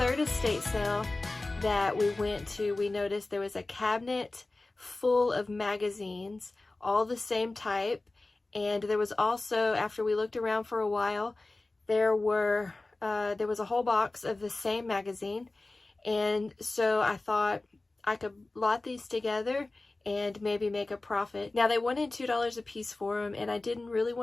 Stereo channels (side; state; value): right; quieter; 3.1 dB